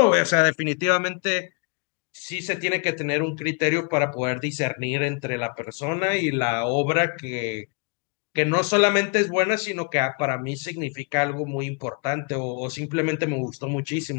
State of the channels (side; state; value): right; quieter; 35.8 dB